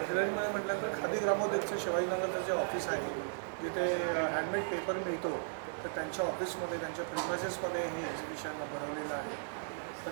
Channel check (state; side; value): silent; left; 54 dB below the other